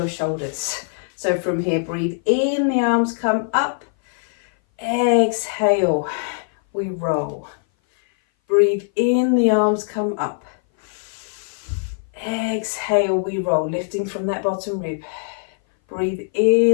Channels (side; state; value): right; silent; 59 dB below the other